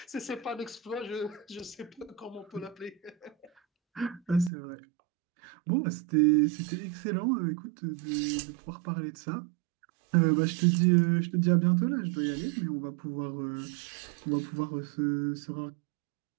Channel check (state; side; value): drops out; left; at 4.5 s